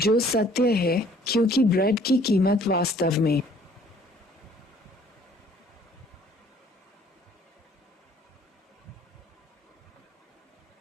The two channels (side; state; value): both; normal; correlation 0.58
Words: सत्य है क्योंकि ब्रेड की कीमत वास्तव में